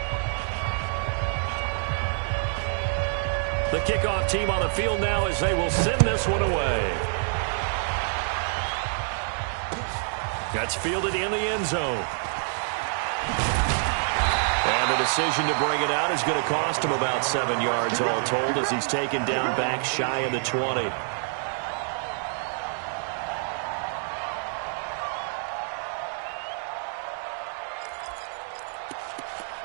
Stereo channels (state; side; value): silent; left; 60 dB below the other